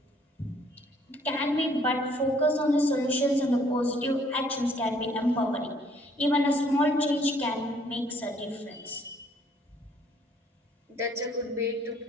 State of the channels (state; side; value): normal; both; correlation 0.62